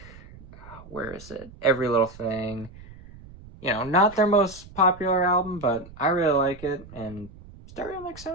where is it? Every Little Thing. Not their most popular album, but I really like it, and Stereo Mix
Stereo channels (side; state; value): right; noise; rumble, 19 dB below the sound